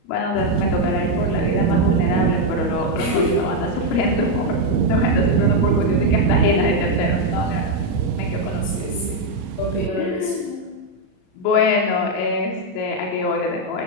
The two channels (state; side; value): late; right; 33 ms